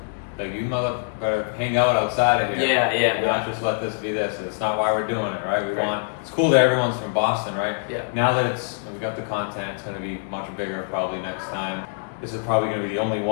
Like, you mother better hang out outside of here. Yeah. Not just let this be this. It's not why we're doing it, right? It's cool that everyone's from Boston, right? Yeah. Now that we got the content, it's going to be much bigger probably next time. This is probably going to be the only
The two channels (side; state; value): right; silent; digital silence